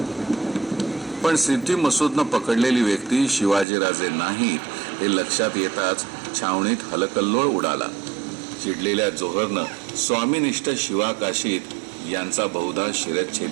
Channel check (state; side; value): drops out; left; at 3.7 s